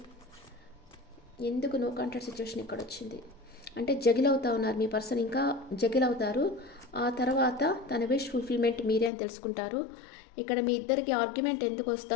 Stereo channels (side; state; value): right; drops out; at 9.1 s